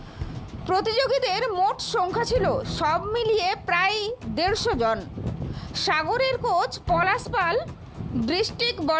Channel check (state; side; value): identical; both; correlation 1.00